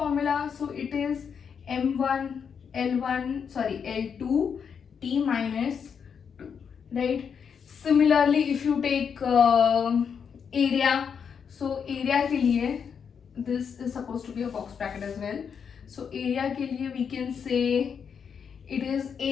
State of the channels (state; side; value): quieter; right; 6.9 dB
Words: So it is m1 L2 T minus 2, right? Similarly, if you take area, so area के लिए this is supposed to be a box bracket as well. So area के लिए we can say it is,